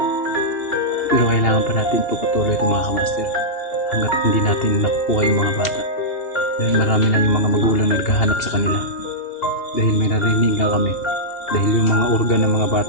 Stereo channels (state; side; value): late; right; 2.8 ms